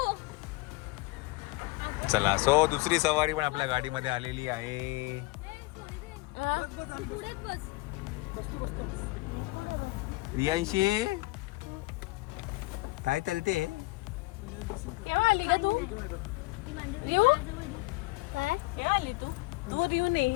चला, सो दुसरी सवारी पण आपल्या गाडीमध्ये आलेली आहे. रियांशी काय चालते?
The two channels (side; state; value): right; quieter; 23.1 dB